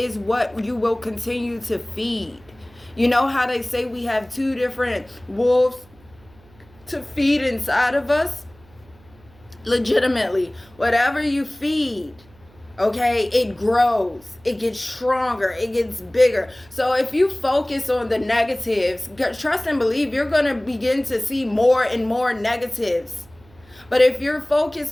what you will continue to feed. You know how they say we have two different wolves to feed inside of us? Legitimately, whatever you feed, okay, it grows, it gets stronger, it gets bigger. So if you focus on the negatives, trust and believe you're going to begin to see more and more negatives. But if you're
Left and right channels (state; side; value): noise; right; hum, 27 dB below the sound